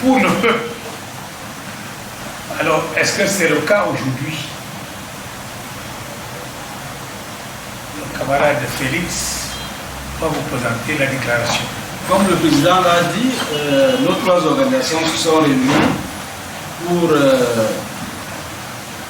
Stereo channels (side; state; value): both; identical; correlation 1.00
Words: pour le peuple. Alors, est-ce que c'est le cas aujourd'hui? Le camarade Félix va vous présenter la déclaration. Comme le président l'a dit, nos 3 organisations se sont réunies pour